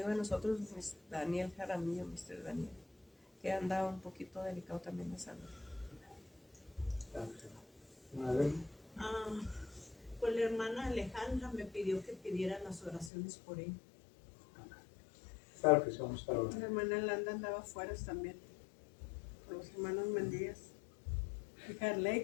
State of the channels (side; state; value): right; drops out; at 13.1 s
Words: de nosotros, Daniel Jaramillo, Mr. Daniel, que anda un poquito delicado también de salud. Pues la hermana Alejandra me pidió que pidiera las oraciones por él. Claro que sí, vamos a estar La orando. hermana Landa andaba afuera también, con los hermanos Mendías. Y Carley,